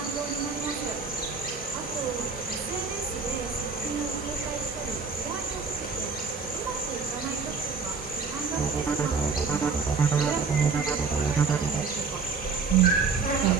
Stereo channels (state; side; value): quieter; left; 5.0 dB